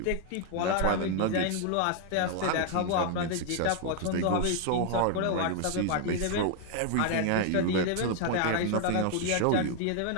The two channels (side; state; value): both; different; correlation 0.00